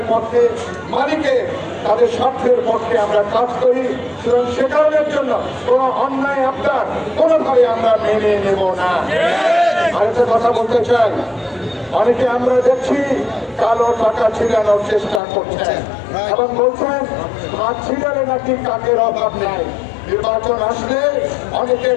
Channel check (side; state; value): right; drops out; at 15.2 s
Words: পক্ষে, মালিকের তাদের স্বার্থের পক্ষে আমরা কাজ করি, সুতরাং সে কারণের জন্য কোন অন্যায় আপনার কোনোভাবে আমরা মেনে নেব না। আরেকটা কথা বলতে চাই, অনেকে আমরা দেখছি কালো টাকা ছিড়ানোর চেষ্টা করছেন এবং বলছেন হাত ছিড়ালে নাকি কাকের অভাব নাই। নির্বাচন আসলে অনেকে